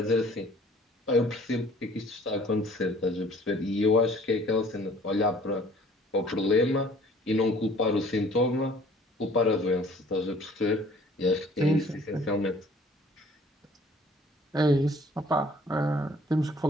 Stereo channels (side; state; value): both; normal; correlation 0.55